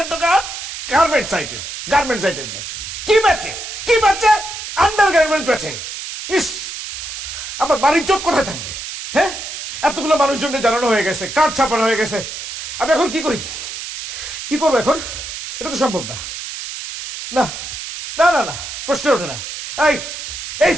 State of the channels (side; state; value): right; noise; hiss, 8 dB below the sound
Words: দোকান? গার্মেন্টস আইটেম, গার্মেন্টস আইটেম কি বেচে? কি বেচে? আন্ডার গার্মেন্টস বেচে। ইস, আমার বাড়ির চোট কোথায় থাকবে? হ্যাঁ, এতগুলো মানুষজনকে জানানো হয়ে গেছে, কার্ড ছাপানো হয়ে গেছে। আমি এখন কি করি? কি করবো এখন? এটা তো সম্ভব না। না না না না, প্রশ্ন ওঠে না। এই এই